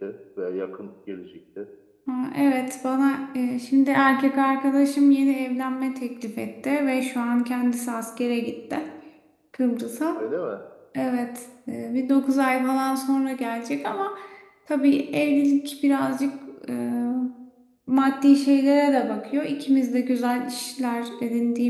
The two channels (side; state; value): both; identical; correlation 1.00